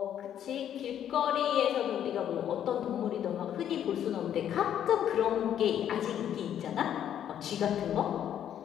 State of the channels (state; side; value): quieter; right; 10.1 dB